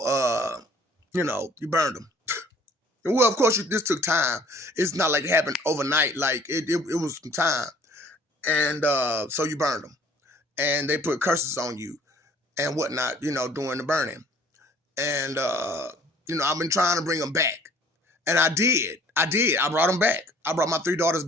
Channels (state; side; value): normal; both; correlation 0.54